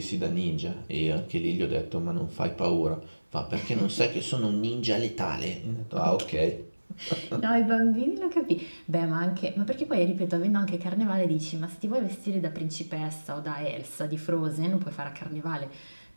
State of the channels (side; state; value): both; inverted; correlation -1.00